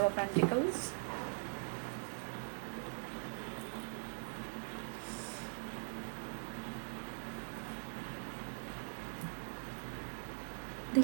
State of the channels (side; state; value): left; silent; digital silence